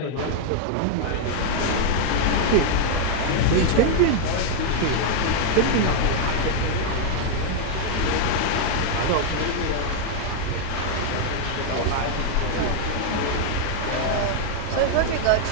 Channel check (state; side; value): different; both; correlation 0.00